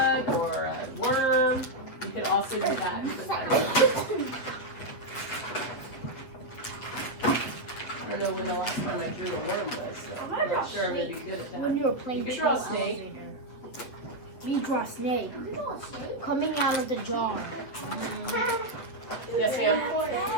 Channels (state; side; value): late; right; 8.2 ms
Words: or a worm, you could also do that. I don't know when the last time I drew a worm was, so I'm not sure I'm going to be good at that. When you were playing, You could draw a snake. We draw a snake coming out of the jar. Yes, ma'am.